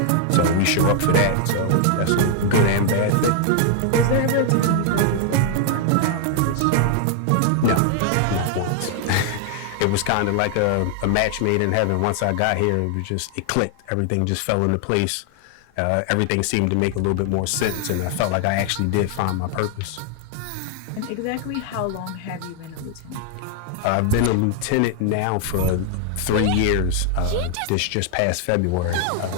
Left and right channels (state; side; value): different; both; correlation 0.00